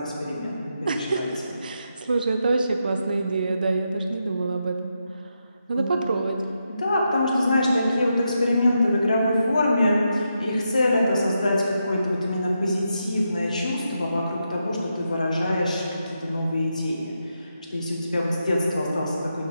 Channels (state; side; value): inverted; both; correlation -0.84